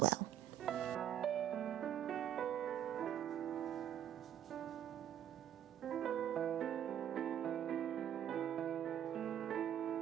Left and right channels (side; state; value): left; quieter; 10.3 dB